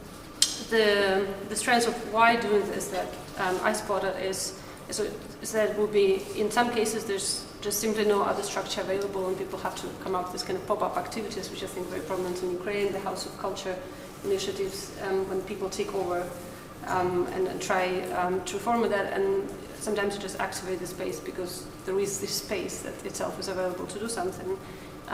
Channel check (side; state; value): both; identical; correlation 1.00